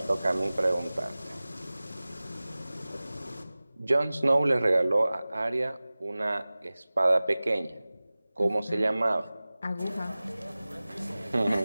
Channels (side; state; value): both; inverted; correlation -0.98